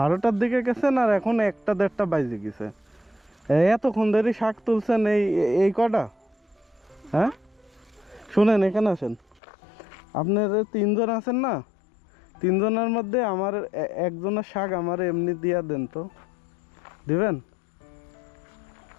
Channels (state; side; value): drops out; right; at 9.4 s